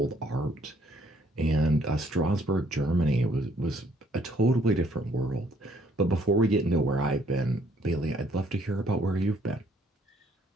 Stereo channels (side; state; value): both; normal; correlation 0.65